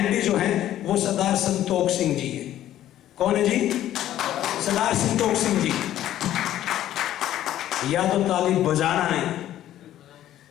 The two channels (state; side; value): quieter; right; 12.6 dB